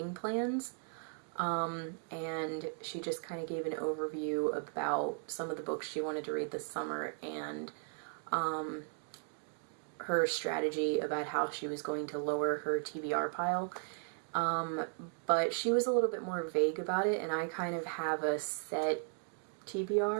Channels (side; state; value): left; silent; 53 dB below the other